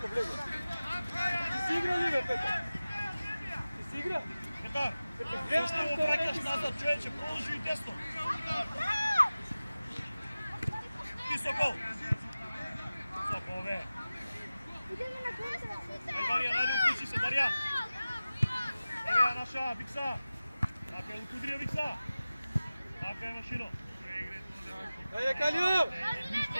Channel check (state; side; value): inverted; both; correlation -0.96